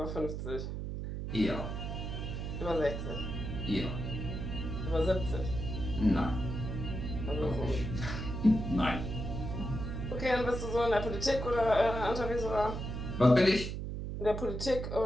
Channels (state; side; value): noise; right; hum, 5 dB below the sound